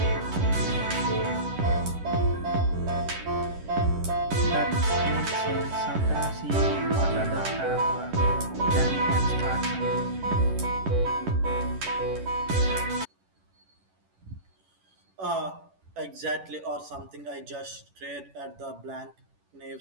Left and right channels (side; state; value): left; late; 11 ms